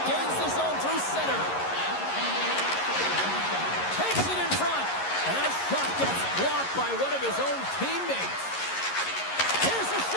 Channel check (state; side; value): late; right; 11 ms